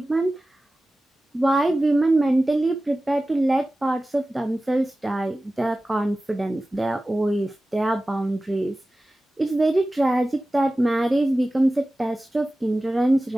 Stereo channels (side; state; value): both; normal; correlation 0.96